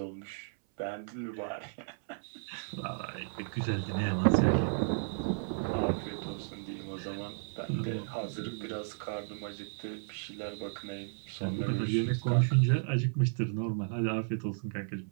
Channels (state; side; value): silent; left; 55 dB below the other